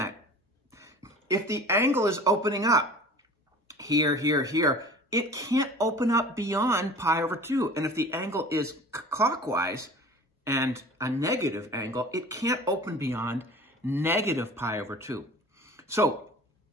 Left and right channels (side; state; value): both; normal; correlation 0.41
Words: If the angle is opening up here, here, here, it can't open up beyond π/2. And if the angle is clockwise and a negative angle, it can't open beyond -π/2. So